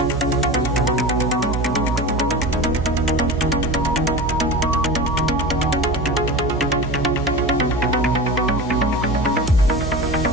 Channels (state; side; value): noise; right; hum, 4 dB below the sound